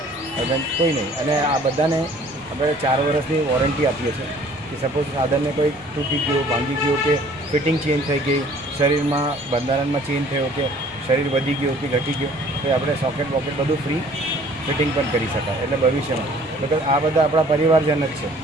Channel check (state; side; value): noise; right; rumble, 27 dB below the sound